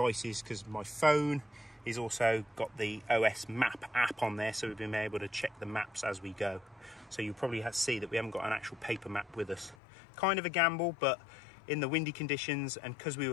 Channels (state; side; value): drops out; right; at 9.8 s